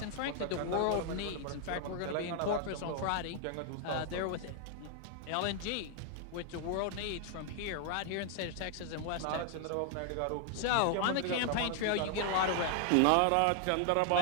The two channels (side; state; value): both; different; correlation 0.00